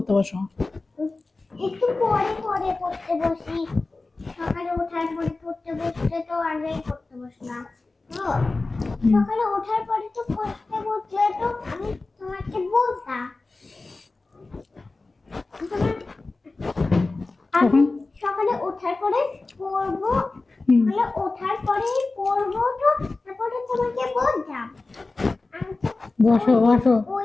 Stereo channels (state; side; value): quieter; right; 3.5 dB